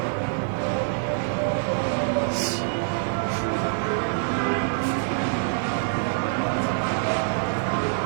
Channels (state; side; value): silent; left; digital silence